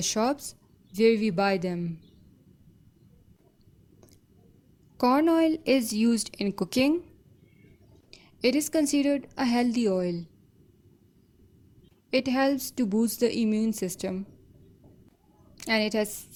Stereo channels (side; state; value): both; identical; correlation 1.00